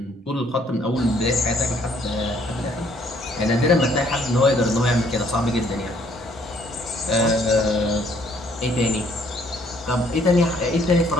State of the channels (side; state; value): both; normal; correlation 0.64